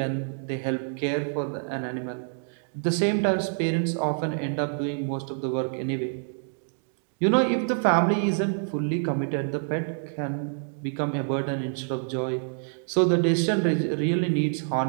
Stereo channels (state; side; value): silent; left; 60 dB below the other